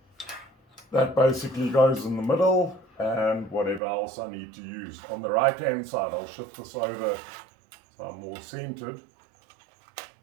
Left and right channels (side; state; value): left; drops out; at 3.8 s